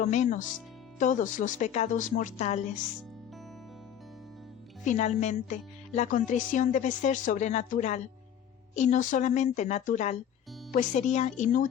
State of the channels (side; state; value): right; quieter; 9.3 dB